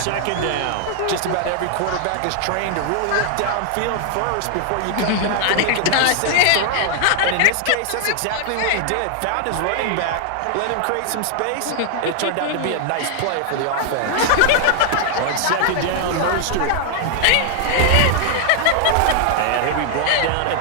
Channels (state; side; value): different; both; correlation 0.00